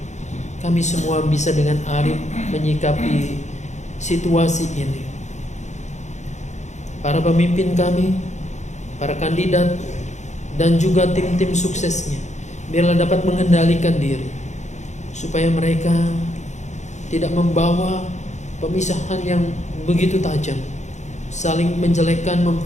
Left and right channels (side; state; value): right; late; 0.34 ms